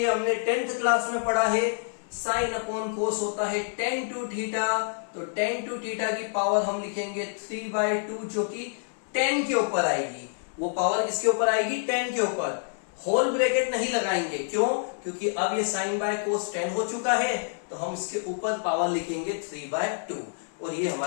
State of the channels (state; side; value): silent; right; 60 dB below the other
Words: हमने 10th क्लास में पढ़ा है, साइन अपॉन कोस होता है tan 2 थीटा, तो tan 2 थीटा की पावर हम लिखेंगे 3/2, जो कि 10 के ऊपर आएगी। वो पावर किसके ऊपर आएगी, 10 के ऊपर। होल ब्रैकेट नहीं लगाएंगे, क्यों, क्योंकि अब ये साइन बाय कोस 10 हो चुका है, तो हम इसके ऊपर पावर लिखेंगे 3/2, और ये